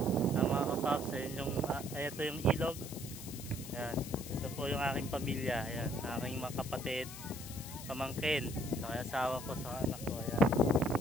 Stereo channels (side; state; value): left; noise; hiss, 12 dB below the sound